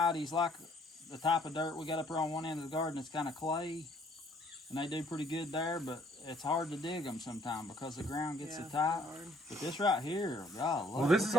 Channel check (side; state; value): both; normal; correlation 0.62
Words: like the type of dirt we got up here on one end of the garden. It's kind of clay, and they do pretty good there, but it's hard to dig them sometimes because the ground gets so tight. But this right here, God, look, This is